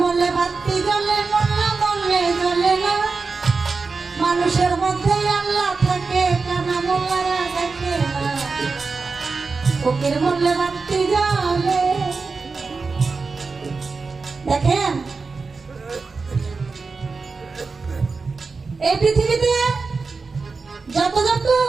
বললে বাতি জ্বলে মোল্লা বললে জ্বলে না মানুষের মধ্যে আল্লাহ থাকে কানা মোল্লারা থাকে না ফকির বললে বাতি জ্বলে দেখেন এই পৃথিবীতে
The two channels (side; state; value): left; quieter; 4.4 dB